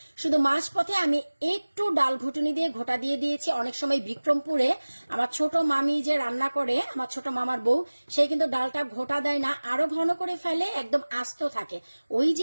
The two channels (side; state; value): both; inverted; correlation -1.00